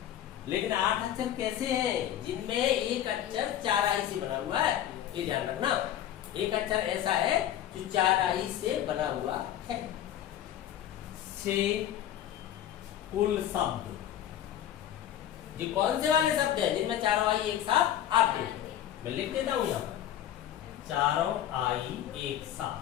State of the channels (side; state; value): right; quieter; 11.3 dB